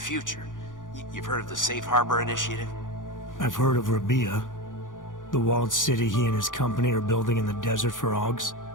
You've heard of the Safe Harbor Initiative? I've heard of Rabia, the walled city he and his company are building in the desert for Ogs.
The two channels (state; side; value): late; right; 0.88 ms